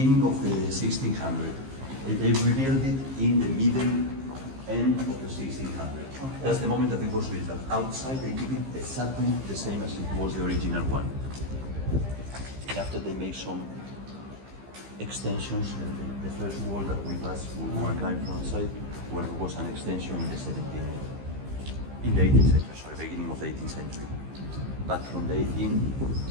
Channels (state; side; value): late; left; 15 ms